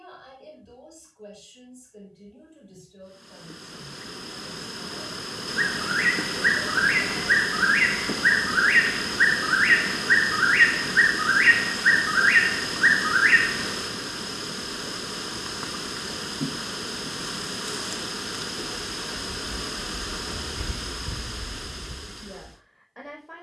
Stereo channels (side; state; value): both; identical; correlation 1.00